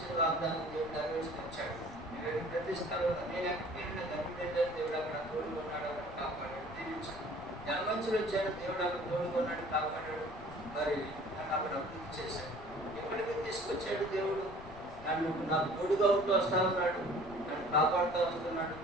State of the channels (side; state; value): left; noise; rumble, 17 dB below the sound